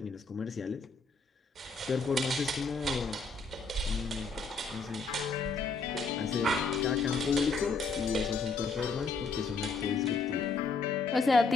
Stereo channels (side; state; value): right; quieter; 4.2 dB